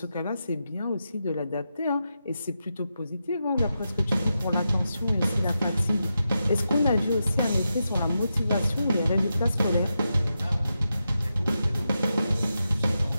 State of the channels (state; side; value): inverted; both; correlation -0.88